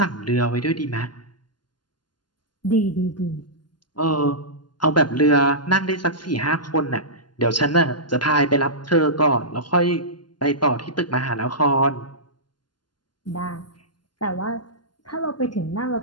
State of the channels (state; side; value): late; right; 0.71 ms